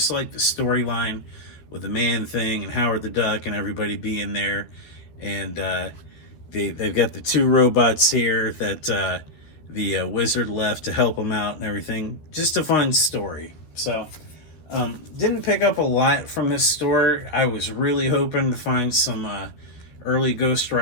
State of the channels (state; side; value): late; right; 13 ms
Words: like the storyline with the man thing and Howard the Duck and everybody being there. And they've got the two robots here that the wizard left to help them out and everything. Just a fun story. So didn't pick up a lot from this store. I was really hoping to find some early Ghost